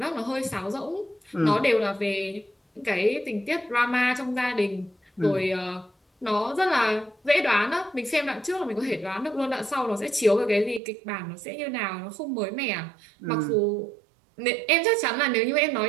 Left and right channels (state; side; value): drops out; left; at 10.8 s